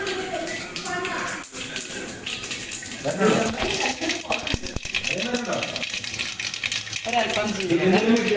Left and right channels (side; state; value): both; identical; correlation 1.00